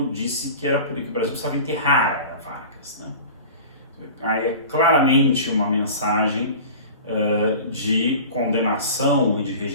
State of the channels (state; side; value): inverted; both; correlation -0.37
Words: disse que era por isso que o Brasil precisava enterrar a era Vargas, né? Aí é claramente uma mensagem de condenação e de